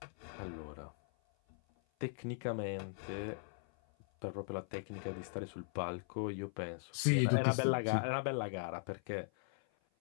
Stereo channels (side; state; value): right; silent; 52 dB below the other